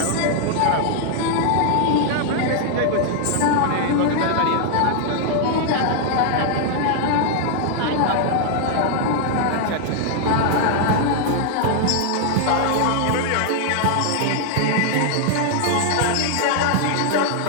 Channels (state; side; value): different; both; correlation 0.00